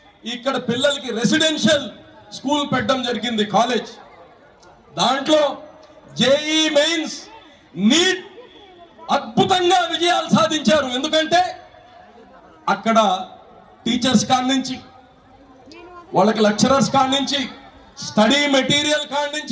ఇక్కడ పిల్లలకి రెసిడెన్షియల్ స్కూల్ పెట్టడం జరిగింది, కాలేజ్. దాంట్లో జేఈ మెయిన్స్, నీట్ అద్భుతంగా విజయాలు సాధించారు. ఎందుకంటే అక్కడ టీచర్స్ కాడి నుంచి, వాళ్ళకి లెక్చరర్స్ కాడి నుంచి, స్టడీ మెటీరియల్ కాడి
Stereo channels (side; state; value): both; identical; correlation 1.00